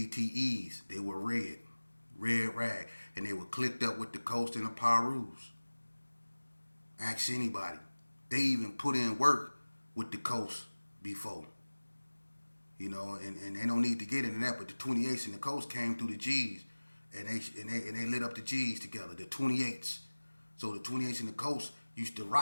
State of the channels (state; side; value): inverted; both; correlation -1.00